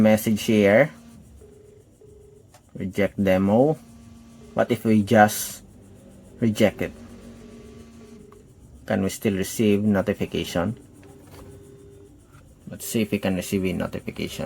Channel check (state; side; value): identical; both; correlation 1.00